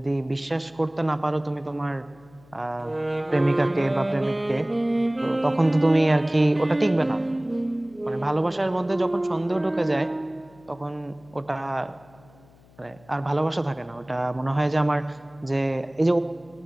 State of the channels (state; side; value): noise; left; hum, 27 dB below the sound